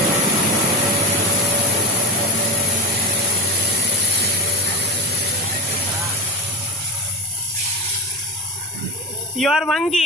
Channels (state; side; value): normal; both; correlation 0.20